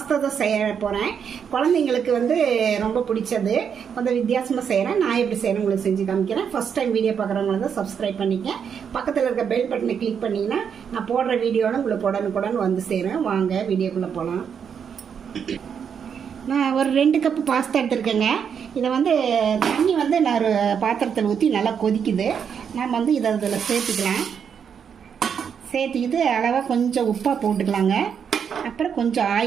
தான் செய்ய போகிறேன். குழந்தைங்களுக்கு வந்து ரொம்ப பிடிச்சது. கொஞ்சம் வித்தியாசமாக செய்கிறேன். நான் எப்படி செய்கிறேன் உங்களுக்கு செஞ்சு காமிக்கிறேன். ஃபர்ஸ்ட் டைம் வீடியோ பார்க்குறவங்கள தான் சப்ஸ்கிரைப் பண்ணிக்க. பக்கத்தில் இருக்க பெல் பட்டனை கிளிக் பண்ணிங்கன்னா நான் போடுற வீடியோவில் உங்களுக்கு உடனுக்குடன் வந்து சேரும். வாங்க வீடியோக்குள்ளே போகலாம். நான் ஒரு 2 கப்பு பாஸ்தா எடுத்துருக்கேங்க. இதை வந்து தண்ணி வந்து நான் ஒரு பாத்திரத்தில் ஊற்றி நல்லா கொதிக்குது. நம்ம வந்து இதை இதில் சேர்த்துக்கலாம். சேர்த்துக்கிட்டு அளவாக கொஞ்சம் உப்பாக போட்டுக்கலாங்க. அப்புறம் கொஞ்சம்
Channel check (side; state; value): left; quieter; 7.3 dB